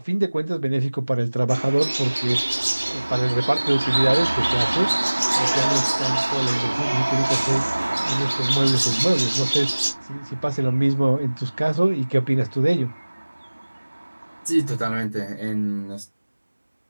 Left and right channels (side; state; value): both; inverted; correlation -1.00